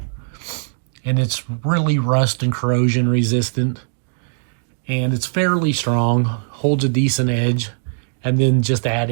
and it's really rust and corrosion resistant, and it's fairly strong, holds a decent edge, and then just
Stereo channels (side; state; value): left; silent; digital silence